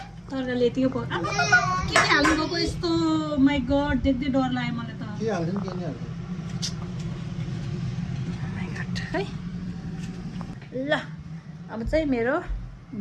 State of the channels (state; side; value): identical; both; correlation 1.00